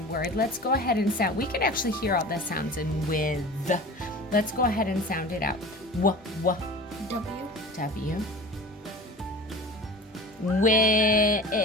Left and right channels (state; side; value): normal; both; correlation 0.36